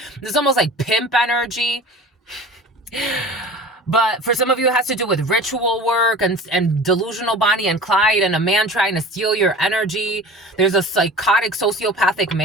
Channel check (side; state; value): both; normal; correlation 0.39